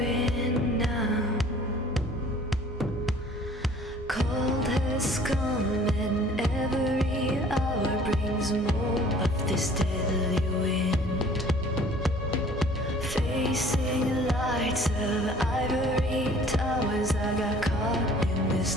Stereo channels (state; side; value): normal; both; correlation 0.52